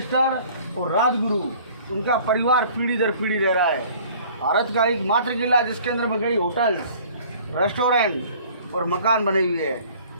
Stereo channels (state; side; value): inverted; both; correlation -0.51